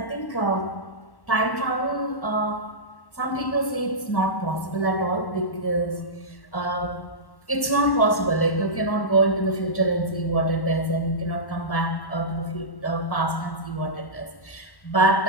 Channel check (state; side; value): late; right; 1.1 ms